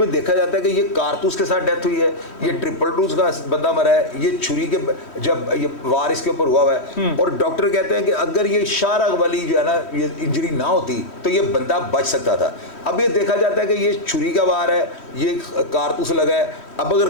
देखा जाता है कि ये कारतूस के साथ डेथ हुई है, ये ट्रिपल डोज का बंदा मरा है, ये छुरी के जब ये वार इसके ऊपर हुआ हुआ है। और डॉक्टर कहते हैं कि अगर ये शाहरग वाली जो है ना ये इंजरी ना होती तो ये बंदा बच सकता था। अब ये देखा जाता है कि ये छुरी का वार है, ये कारतूस लगा है। अब अगर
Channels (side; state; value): right; late; 3.1 ms